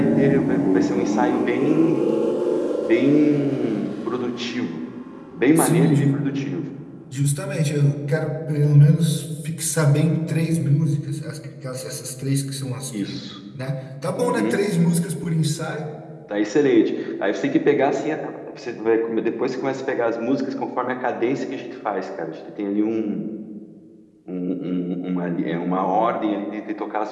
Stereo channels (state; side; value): identical; both; correlation 1.00